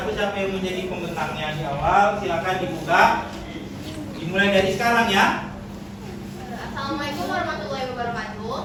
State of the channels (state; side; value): identical; both; correlation 1.00